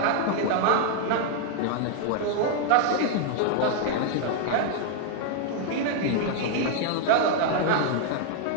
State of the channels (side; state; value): both; different; correlation 0.00